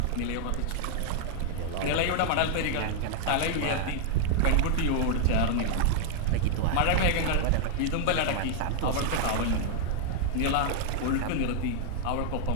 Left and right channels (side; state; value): both; different; correlation 0.00